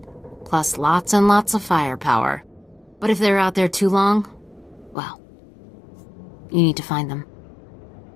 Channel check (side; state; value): right; drops out; at 5.0 s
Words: Plus lots and lots of firepower. But if they're out there too long, well, you need to find them.